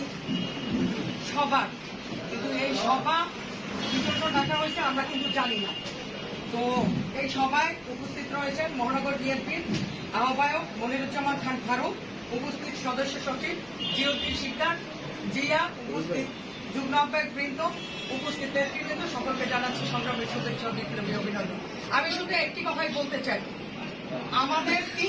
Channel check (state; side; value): identical; both; correlation 1.00